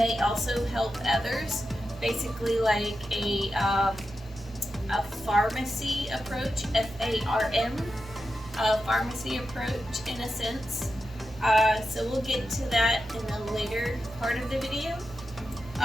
also help others. Basically like a pharmacy approach, F-A-R-M, pharmacy approach in a sense. So we'll get to that in the later part of the video.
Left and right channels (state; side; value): normal; both; correlation 0.90